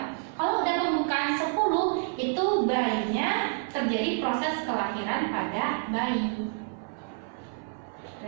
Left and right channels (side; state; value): left; silent; 56 dB below the other